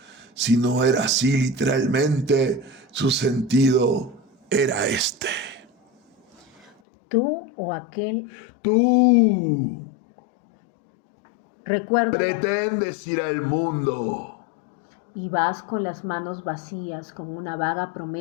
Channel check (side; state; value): right; drops out; at 6.7 s